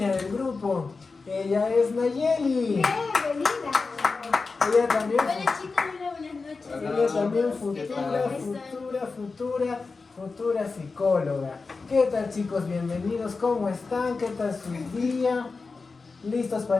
del grupo. Ella es Nayeli. Bienvenida. Ella también, Hola chicos, hola, buenas noches. ella también ¿Qué tal? futura psicóloga. ¿Qué tal, chicos? Bienvenidos. ¿Cómo están? ¿Qué tal su día? ¿Listos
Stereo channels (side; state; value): right; quieter; 4.2 dB